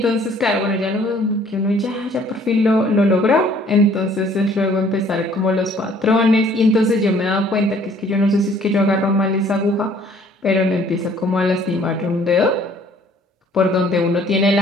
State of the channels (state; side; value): normal; both; correlation 0.58